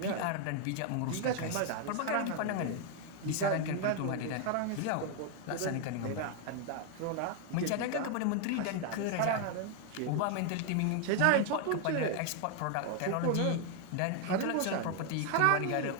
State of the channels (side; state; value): both; different; correlation 0.00